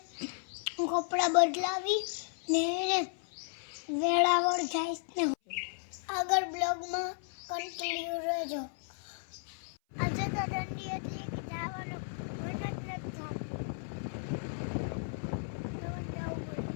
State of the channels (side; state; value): right; silent; 55 dB below the other